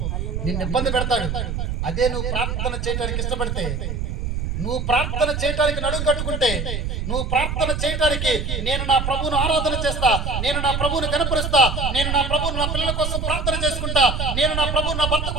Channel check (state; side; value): noise; right; rumble, 2 dB below the sound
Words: నిన్ను ఇబ్బంది పెడతాడు. అదే నువ్వు ప్రార్థన చేయడానికి ఇష్టపడితే, నువ్వు ప్రార్థన చేయడానికి నడుము కట్టుకుంటే, నువ్వు ప్రార్థన చేయడానికి నేను నా ప్రభువును ఆరాధన చేస్తా, నేను నా ప్రభువును కనపరుస్తా, నేను నా ప్రభువును నా పిల్లల కోసం ప్రార్థన చేసుకుంటా, నేను నా ప్రభువు నా భర్త